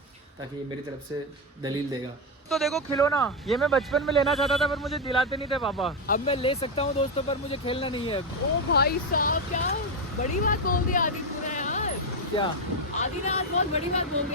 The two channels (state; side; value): normal; both; correlation 0.07